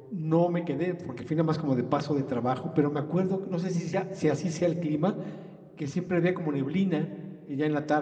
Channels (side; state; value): both; identical; correlation 1.00